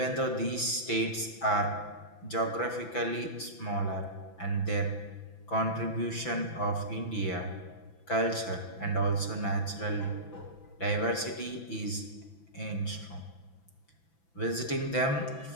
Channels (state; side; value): late; right; 6.0 ms